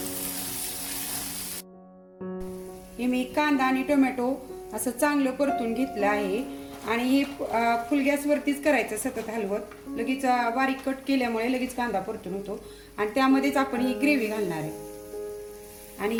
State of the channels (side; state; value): both; identical; correlation 1.00